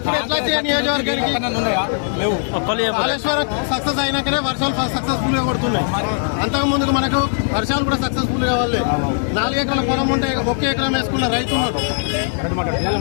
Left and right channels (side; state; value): right; silent; digital silence